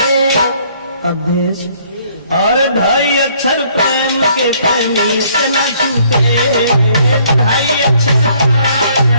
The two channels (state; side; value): inverted; both; correlation -0.63